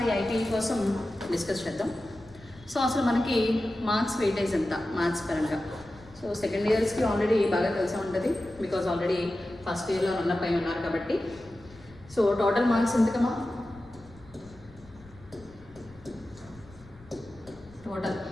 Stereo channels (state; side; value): noise; left; rumble, 23 dB below the sound